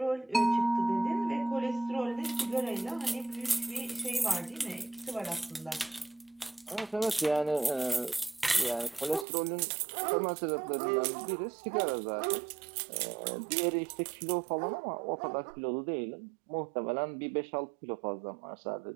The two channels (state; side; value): drops out; left; at 9.2 s